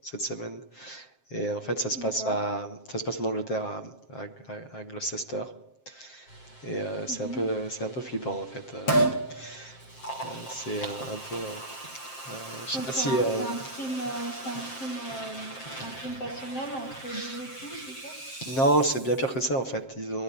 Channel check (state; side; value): late; right; 7.6 ms